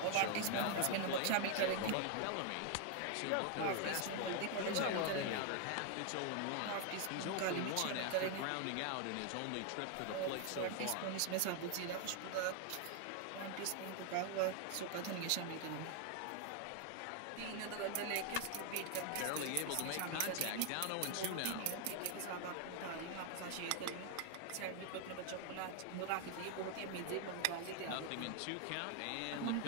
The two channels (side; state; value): both; different; correlation 0.00